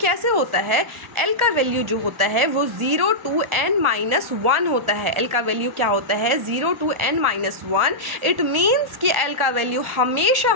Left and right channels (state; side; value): late; left; 1.4 ms